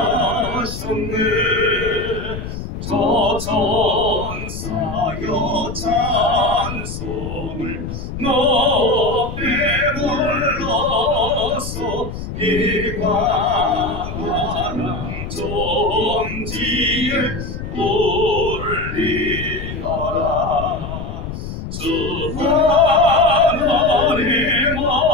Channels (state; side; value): noise; left; rumble, 8 dB below the sound